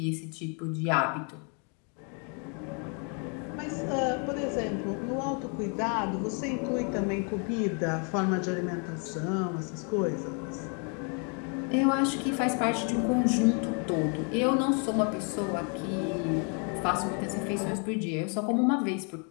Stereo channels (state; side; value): quieter; right; 38.3 dB